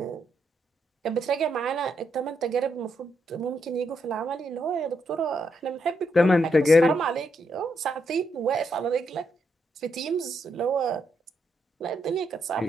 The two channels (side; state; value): both; normal; correlation 0.79